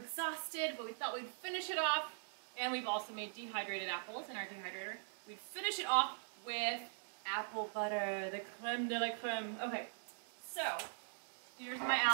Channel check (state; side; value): silent; left; digital silence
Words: but we thought we'd finish it off. And we've also made dehydrated apples in our dehydrator. We'd finish it off with apple butter, the creme de la creme. Okay, so here's my